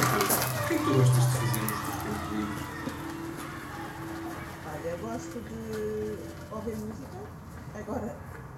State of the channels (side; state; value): both; identical; correlation 1.00